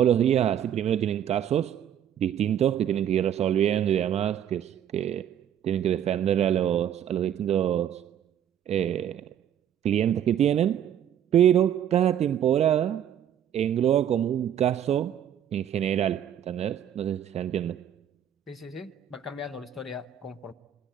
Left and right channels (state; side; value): quieter; left; 9.8 dB